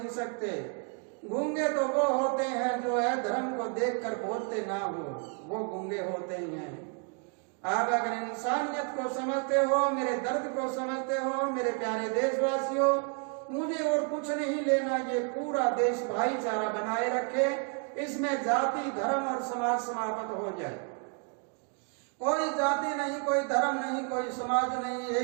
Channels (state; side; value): quieter; left; 39.2 dB